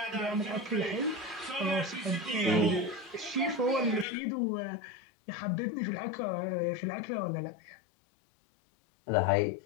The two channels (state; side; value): drops out; right; at 4.0 s